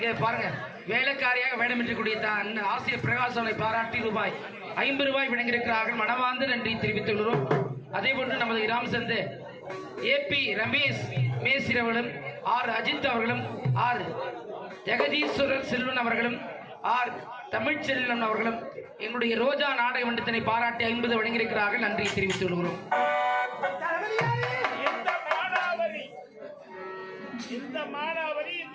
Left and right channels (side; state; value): both; identical; correlation 1.00